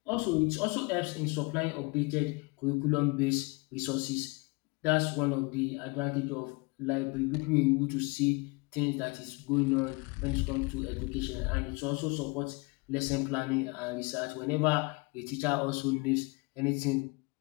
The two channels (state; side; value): quieter; right; 28.1 dB